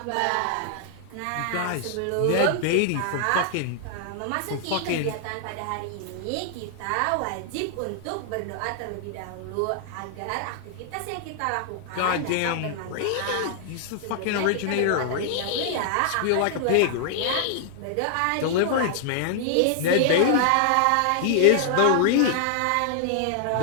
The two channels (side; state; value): both; different; correlation 0.00